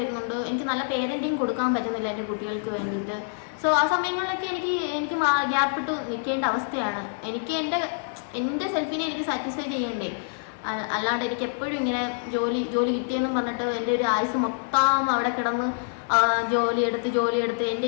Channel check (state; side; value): silent; right; 61 dB below the other